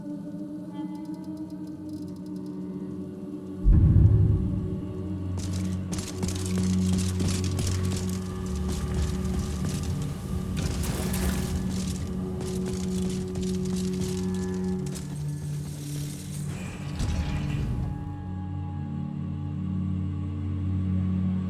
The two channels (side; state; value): both; identical; correlation 1.00